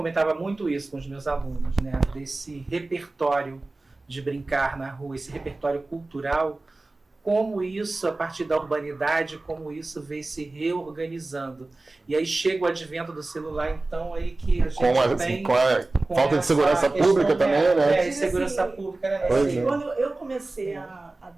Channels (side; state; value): left; quieter; 3.1 dB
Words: muito isso com os meus alunos, né, desse repertório de brincar na rua, esse repertório cultural, como isso, a partir da urbanidade, como isso vem se reorganizando. E aí chega o advento do celular, então, aí que a gente com a falta de segurança pública também, né? De segurança pública, né? Quando eu comecei a